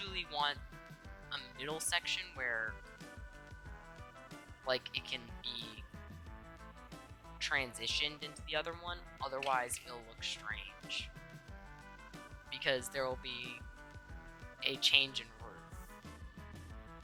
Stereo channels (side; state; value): both; identical; correlation 1.00